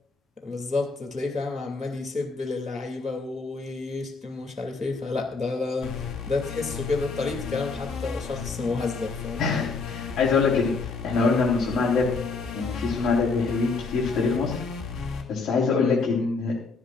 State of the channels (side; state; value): right; quieter; 4.2 dB